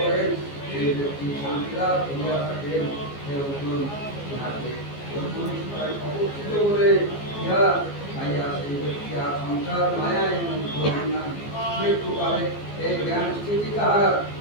সেই ব্যক্তি শান্তি লাভ করিয়া থাকেন। অবস্থিত বলে ইহা খাইয়া সেই ব্যক্তি আর সংসার মায়ায় মুগ্ধ হন না। মৃত্যুকালে এই জ্ঞান স্থিতি তাহার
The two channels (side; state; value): right; late; 14 ms